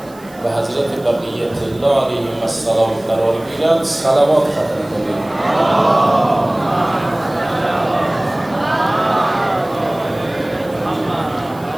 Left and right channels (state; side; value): noise; right; hiss, 25 dB below the sound